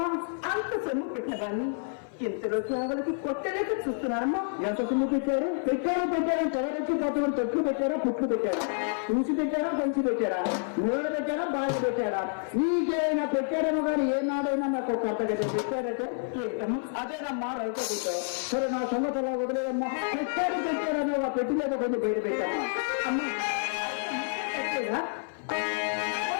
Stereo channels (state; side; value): silent; right; 56 dB below the other